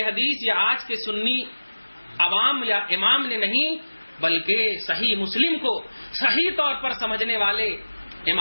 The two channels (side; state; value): both; inverted; correlation -1.00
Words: حدیث یا آج کے سنی عوام یا امام نے نہیں، بلکہ صحیح مسلم کو صحیح طور پر سمجھنے والے